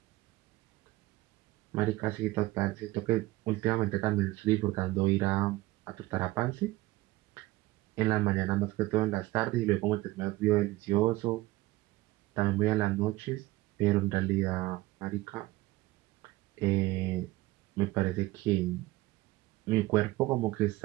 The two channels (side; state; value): left; quieter; 18.7 dB